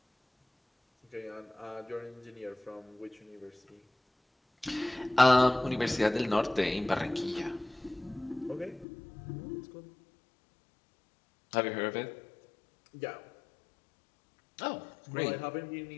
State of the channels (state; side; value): drops out; right; at 8.8 s